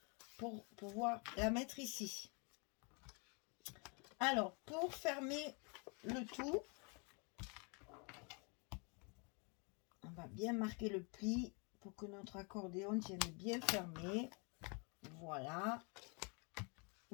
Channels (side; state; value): right; quieter; 33.6 dB